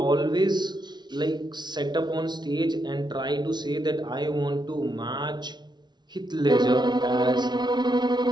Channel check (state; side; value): late; left; 0.20 ms